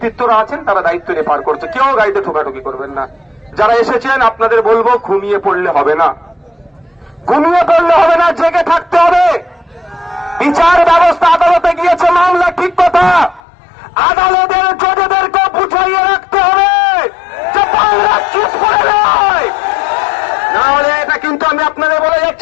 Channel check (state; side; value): drops out; right; at 13.4 s